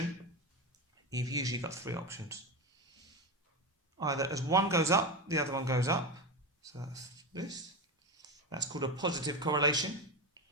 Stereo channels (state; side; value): normal; both; correlation 0.18